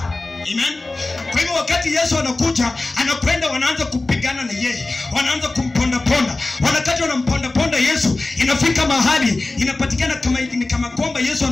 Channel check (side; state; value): right; quieter; 3.1 dB